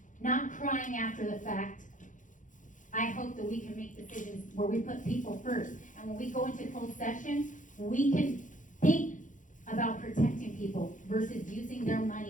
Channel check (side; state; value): right; late; 0.37 ms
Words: Not crying after the fact. I hope that we can make decisions where we put people first. And when we go into closed session, we can think about protecting people versus using their